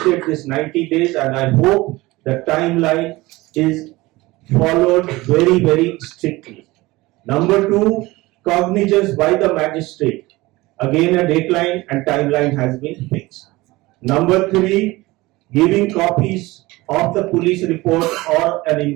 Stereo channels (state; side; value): quieter; left; 20.4 dB